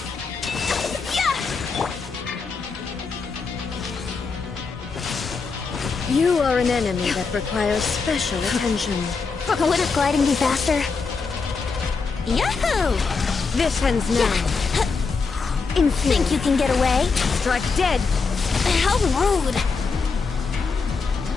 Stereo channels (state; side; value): quieter; right; 4.7 dB